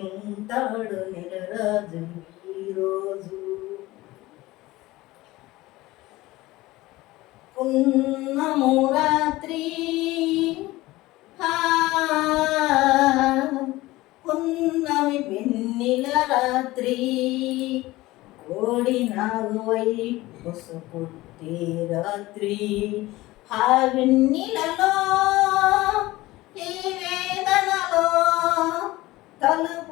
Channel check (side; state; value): right; quieter; 18.7 dB